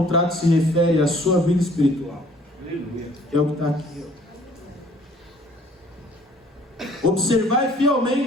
se refere à sua vida espiritual. Que é o que está aqui, ó. Observai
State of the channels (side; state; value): both; normal; correlation 0.56